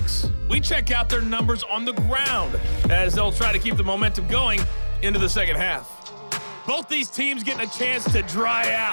we check out their numbers on the ground as they'll try to keep the momentum going into the second half. Both these teams getting a chance to dry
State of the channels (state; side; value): inverted; both; correlation -1.00